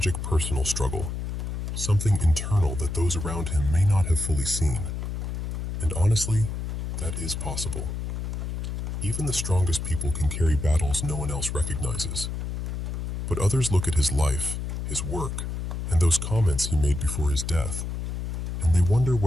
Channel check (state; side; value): noise; left; hum, 4 dB below the sound